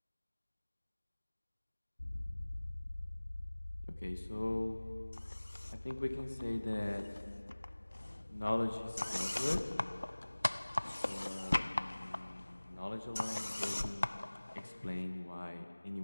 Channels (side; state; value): both; inverted; correlation -1.00